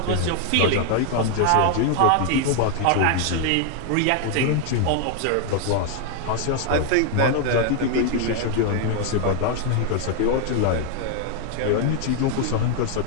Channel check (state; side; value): different; both; correlation 0.00